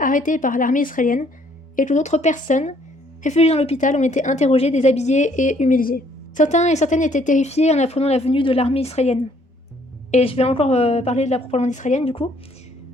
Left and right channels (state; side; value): normal; both; correlation 0.64